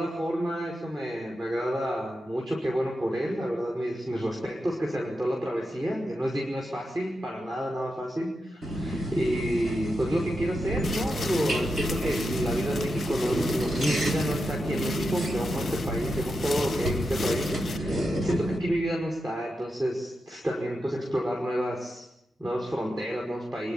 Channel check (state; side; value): normal; both; correlation 0.88